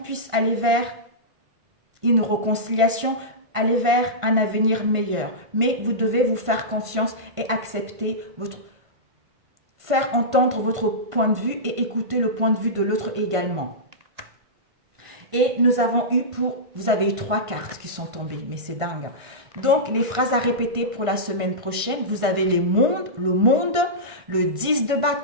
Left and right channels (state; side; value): late; left; 1.5 ms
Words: aller vers une réconciliation, aller vers un avenir meilleur. Mais vous devez vous faire confiance et accepter faire entendre votre point de vue et écouter le point de vue de l'autre également. Et vous avez eu 3 cartes qui sont tombées, mais c'est dingue. Donc, les phrases à répéter pour la semaine prochaine, vous avez le monde, le 10 de